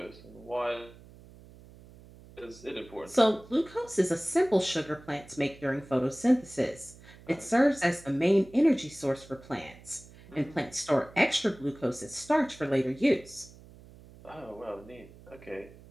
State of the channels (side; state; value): right; noise; hum, 21 dB below the sound